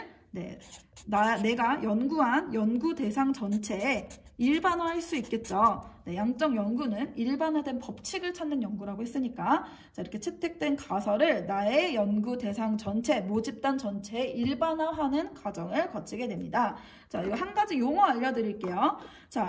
내가 연구한 연구 대상 전체에 일반화할 수 있겠죠. 네, 양적 연구는 일반화된 법칙을 찾는 연구라고 했으니까 자, 이렇게 채택된 가설을 나의 연구 대상 전체, 모집단 전체에 일반화하는 과정을 거치게 됩니다. 자, 이거 한 가지 용어 알려드릴게요.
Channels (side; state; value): both; identical; correlation 1.00